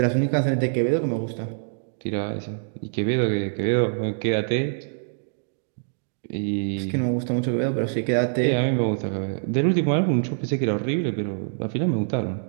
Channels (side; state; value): left; silent; digital silence